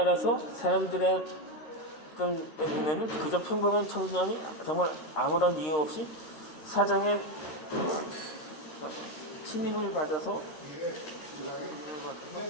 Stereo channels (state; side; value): late; right; 9.0 ms